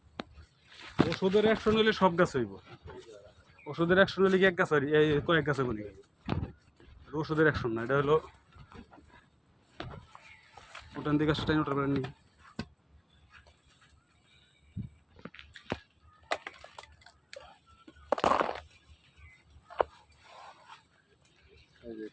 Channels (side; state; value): both; identical; correlation 1.00